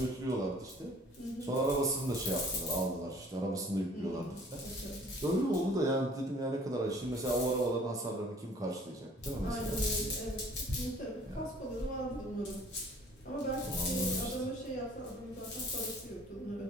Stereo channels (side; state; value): both; normal; correlation 0.53